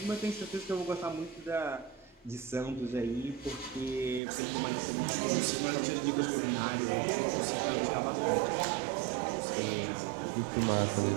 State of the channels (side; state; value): left; drops out; at 4.2 s